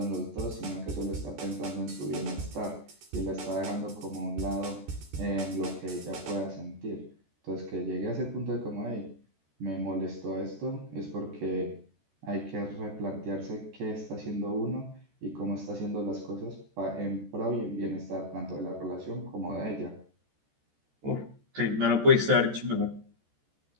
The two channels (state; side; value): late; left; 14 ms